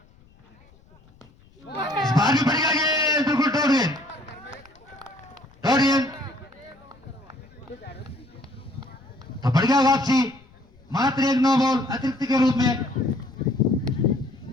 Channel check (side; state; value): left; noise; rumble, 28 dB below the sound